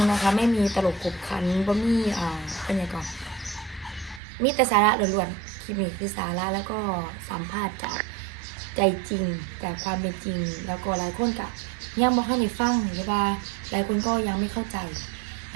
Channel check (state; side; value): drops out; left; at 4.2 s